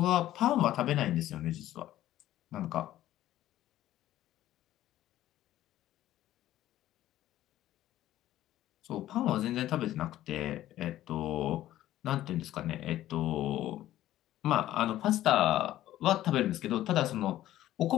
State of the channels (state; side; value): quieter; right; 13.8 dB